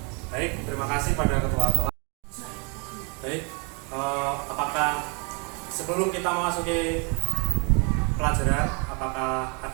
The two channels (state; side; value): quieter; left; 34.0 dB